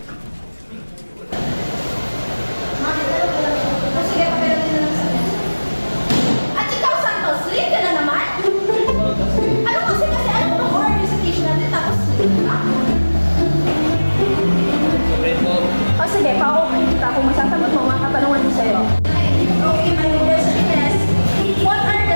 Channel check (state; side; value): inverted; both; correlation -1.00